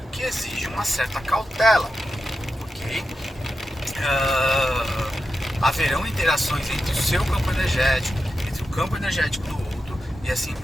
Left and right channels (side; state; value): both; normal; correlation 0.89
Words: que exige uma certa cautela, ok? Haverão interações entre o seu campo energético, entre o campo energético do outro e assim